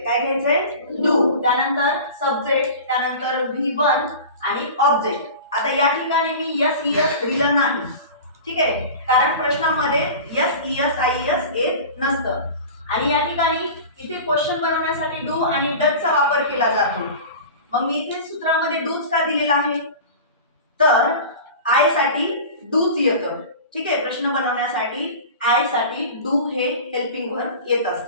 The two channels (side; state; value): both; inverted; correlation -0.35